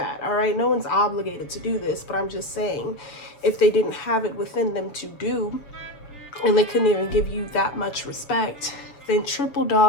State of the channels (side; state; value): right; late; 7.4 ms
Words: all right? No one's obligated to do this, but I'm just saying, if they didn't have it within them to do, and they couldn't even give you that much respect, then triple